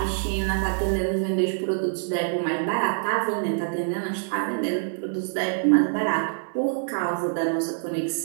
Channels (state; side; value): silent; left; 61 dB below the other